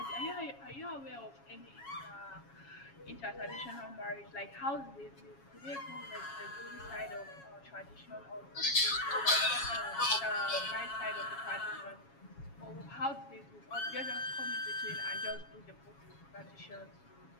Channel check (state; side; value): late; right; 7.3 ms